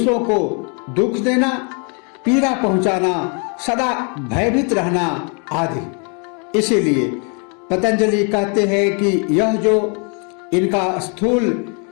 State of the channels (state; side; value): quieter; right; 37.2 dB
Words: को दुख देना, पीड़ा पहुंचाना, सदा भयभीत रहना आदि। इसीलिए पतंजलि कहते हैं कि यह जो इनका स्थूल